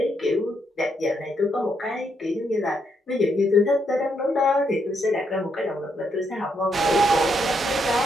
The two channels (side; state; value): both; normal; correlation 0.77